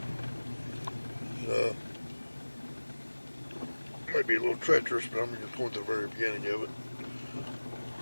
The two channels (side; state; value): both; inverted; correlation -1.00